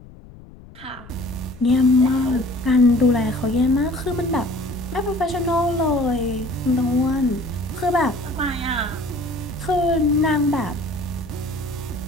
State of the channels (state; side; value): noise; left; rumble, 20 dB below the sound